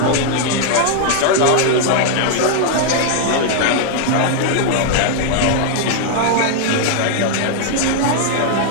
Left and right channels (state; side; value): different; both; correlation 0.00